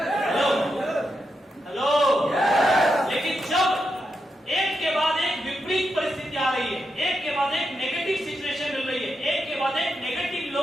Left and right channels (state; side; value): normal; both; correlation 0.85